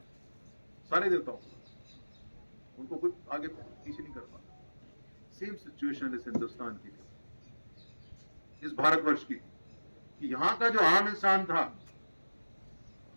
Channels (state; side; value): inverted; both; correlation -1.00